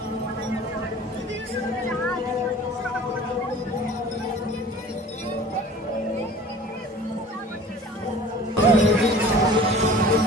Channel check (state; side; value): normal; both; correlation 0.44